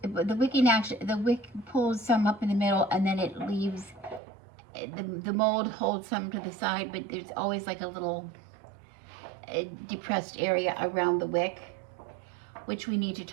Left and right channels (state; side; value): drops out; left; at 4.2 s